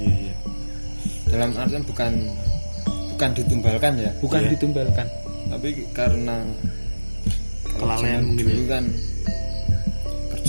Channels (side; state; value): both; inverted; correlation -1.00